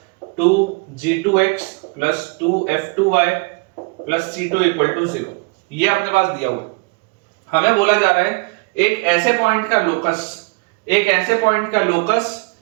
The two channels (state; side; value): quieter; left; 30.1 dB